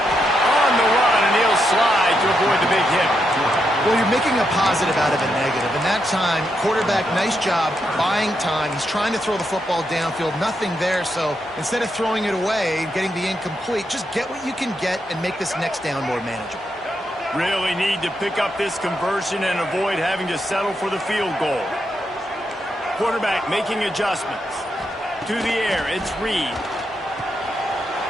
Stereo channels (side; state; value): both; normal; correlation 0.82